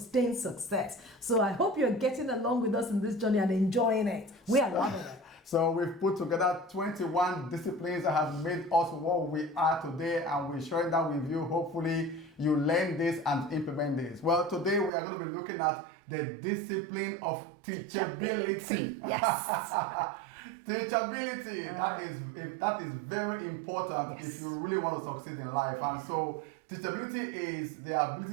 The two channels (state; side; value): drops out; left; at 14.9 s